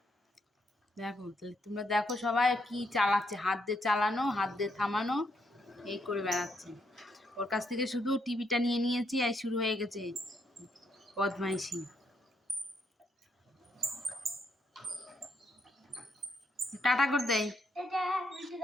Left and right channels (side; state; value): both; normal; correlation 0.76